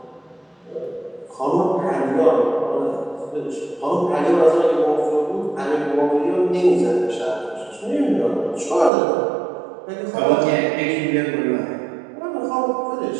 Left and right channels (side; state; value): left; drops out; at 8.9 s